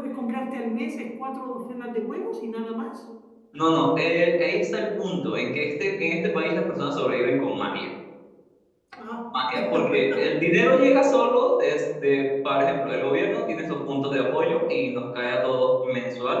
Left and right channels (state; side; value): identical; both; correlation 1.00